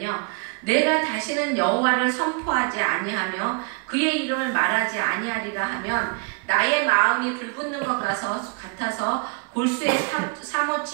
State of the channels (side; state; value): left; quieter; 35.6 dB